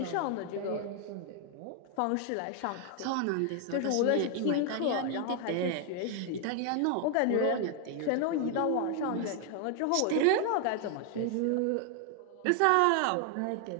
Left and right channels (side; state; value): both; different; correlation 0.00